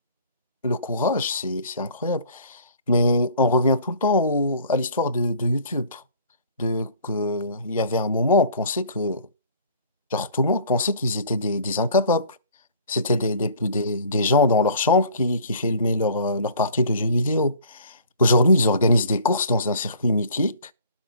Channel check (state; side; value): inverted; both; correlation -0.50